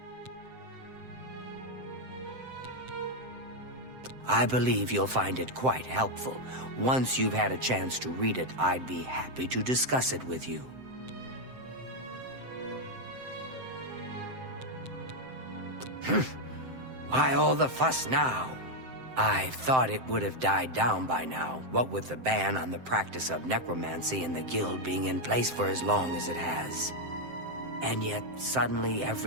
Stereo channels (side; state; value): left; late; 7.7 ms